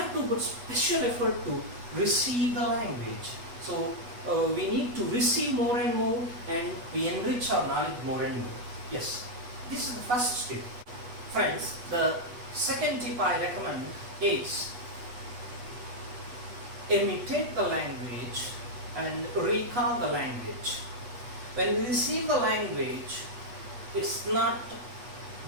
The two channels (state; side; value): late; left; 8.2 ms